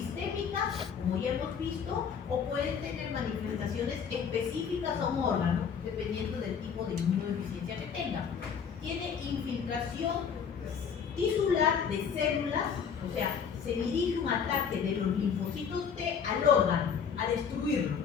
como ya hemos visto, o pueden tener manifestaciones específicas a un órgano, dependiendo del tipo de inmunodeficiencia que tengan. Tiene infiltración tisular de células, o sea, se dirige un ataque de los linfocitos T al órgano, a destruirlo,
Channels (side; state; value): right; quieter; 6.9 dB